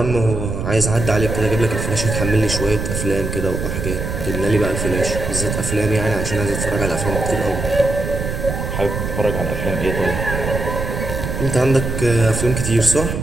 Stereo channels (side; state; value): right; noise; rumble, 4 dB below the sound